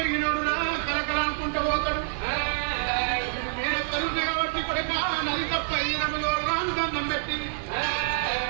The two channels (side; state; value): left; silent; digital silence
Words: రా కలకల అనుకుంటూ పోతాడు నేను తరుణి కాబట్టి కొడుక నది తప్ప రాను దండం పెట్టి